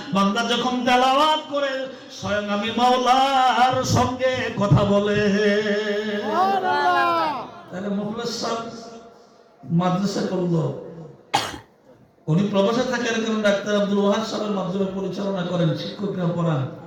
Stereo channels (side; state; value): both; identical; correlation 1.00